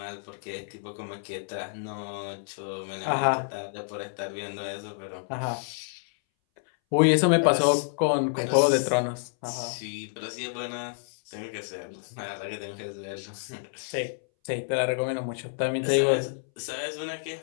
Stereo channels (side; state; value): right; silent; 59 dB below the other